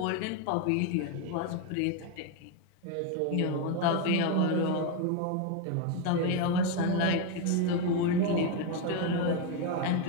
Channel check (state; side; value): different; both; correlation 0.02